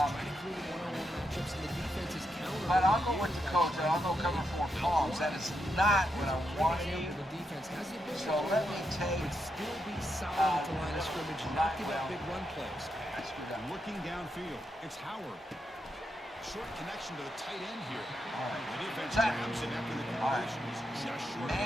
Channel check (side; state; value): both; normal; correlation 0.83